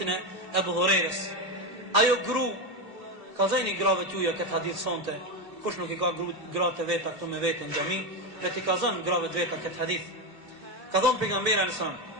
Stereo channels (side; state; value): left; late; 2.5 ms